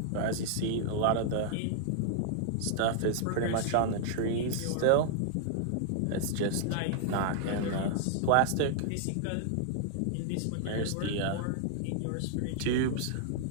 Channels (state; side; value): different; both; correlation 0.00